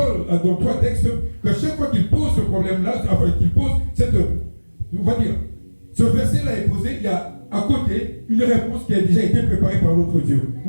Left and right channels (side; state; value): both; inverted; correlation -1.00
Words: 3 textes qu'à chaque fois qu'il pose ce problème-là, enfin qu'il pose cette, on va dire, ce verset-là est posé, il y a à côté une réponse qui a déjà été préparée par notre Dieu.